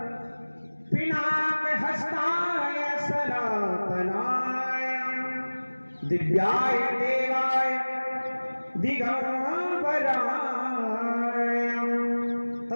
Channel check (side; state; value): both; inverted; correlation -1.00